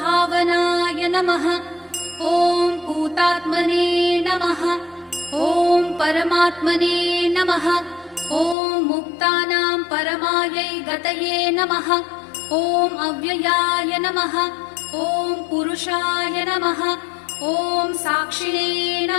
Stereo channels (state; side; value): drops out; right; at 8.6 s